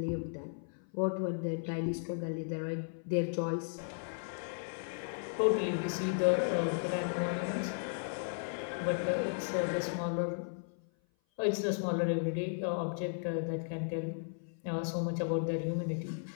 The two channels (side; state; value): right; silent; 54 dB below the other